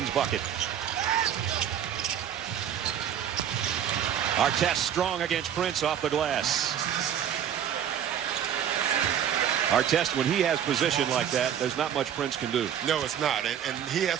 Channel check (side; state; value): left; quieter; 9.4 dB